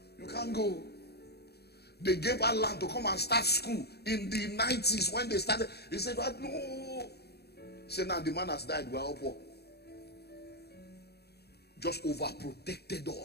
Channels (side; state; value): right; late; 0.47 ms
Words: You can't go. They gave her land to come and start school in the 90s when they started. He said, what? No. He said, now the man has died. We're all poor. Just overprotected